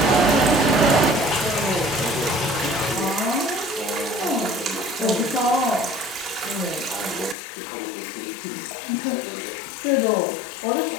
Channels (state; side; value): drops out; right; at 7.4 s